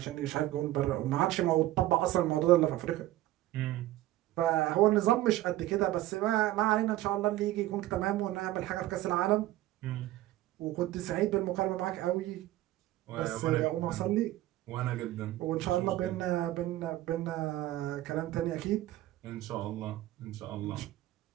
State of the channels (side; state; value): left; quieter; 15.5 dB